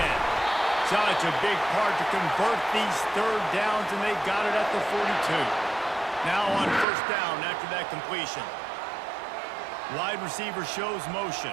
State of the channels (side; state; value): left; drops out; at 6.9 s